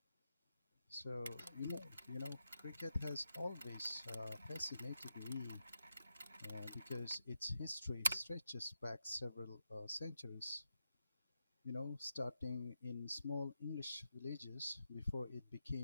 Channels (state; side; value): inverted; both; correlation -0.86